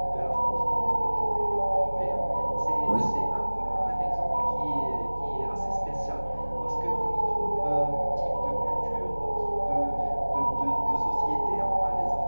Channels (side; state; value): both; inverted; correlation -1.00